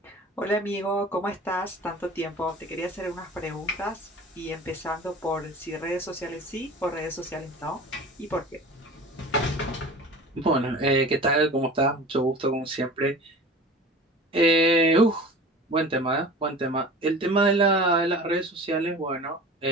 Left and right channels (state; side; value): normal; both; correlation 0.39